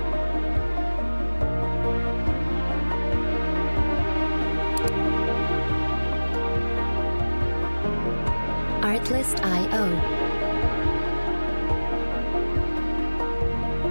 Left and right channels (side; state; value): both; inverted; correlation -1.00